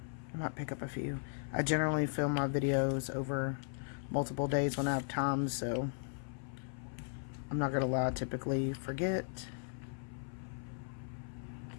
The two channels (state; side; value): silent; right; 53 dB below the other